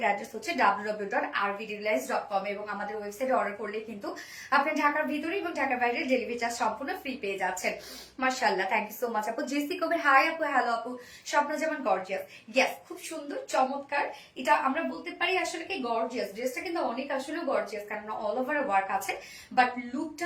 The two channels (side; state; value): both; identical; correlation 1.00